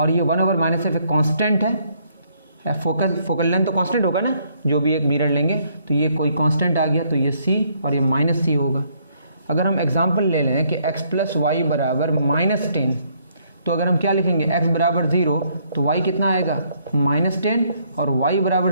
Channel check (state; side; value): inverted; both; correlation -0.68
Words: ये 1/-f एक कांस्टेंट है। फोकल लेंथ तो कांस्टेंट होगा ना, जो भी एक मिरर लेंगे तो ये कोई कांस्टेंट आ गया, तो ये c और ये -c होगा। अगर हम एग्जांपल ले लें कि x प्लस वाई बराबर -10, तो अगर हम क्या लिखेंगे, x बराबर 0 तो y कितना आएगा -10, और y बराबर